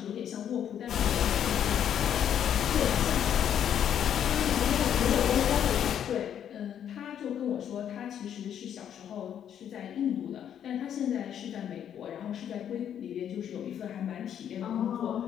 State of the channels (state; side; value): quieter; right; 9.4 dB